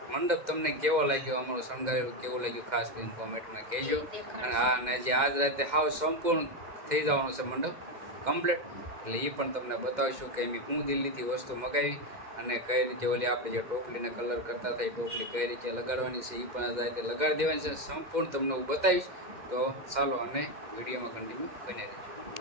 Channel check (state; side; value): late; left; 2.1 ms